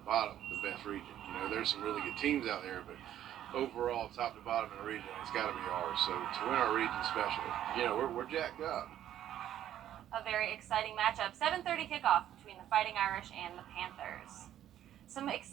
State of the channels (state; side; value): quieter; left; 11.5 dB